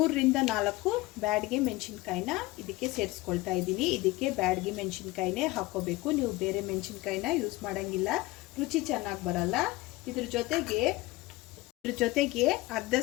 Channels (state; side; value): quieter; right; 20.1 dB